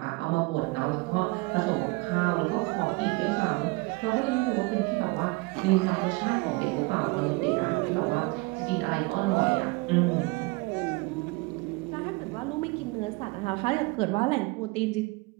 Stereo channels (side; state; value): left; quieter; 24.8 dB